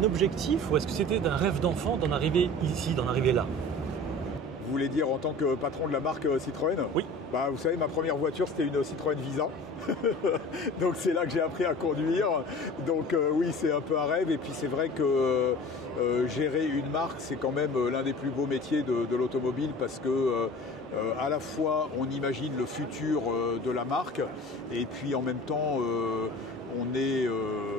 objectif ou est-ce que c'était un rêve d'enfant d'en arriver ici, d'en arriver là? Vous voulez dire en tant que patron de la marque Citroën? Oui. Bah, vous savez, ma première voiture, c'était une Citroën Visa. Donc c'est là que j'ai appris à conduire. Donc oui, c'est un peu un rêve. Et puis c'est vrai que gérer une marque, c'est quand même l'un des plus beaux métiers de l'automobile parce que à la fois on imagine le futur de la marque et puis en même temps on est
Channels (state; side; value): normal; both; correlation 0.41